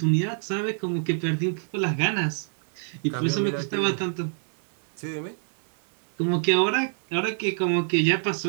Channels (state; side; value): silent; left; 61 dB below the other